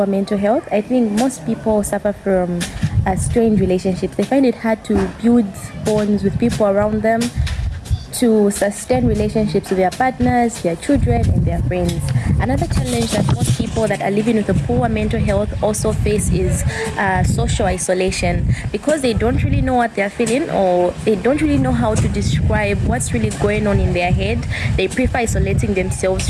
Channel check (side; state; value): both; identical; correlation 1.00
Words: mental health, I think most people suffer from strained relationships. They find it hard to build bonds with people around them, to sustain relationships with their partners, their children, and their friends. Another challenge that most people that are living with a poor mental health also face is social isolation, because they don't really know what they're feeling, or they don't really know how to describe what's really going on in their head. They prefer isolating themselves